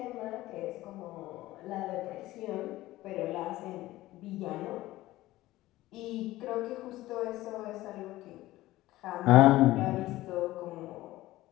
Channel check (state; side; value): quieter; right; 16.8 dB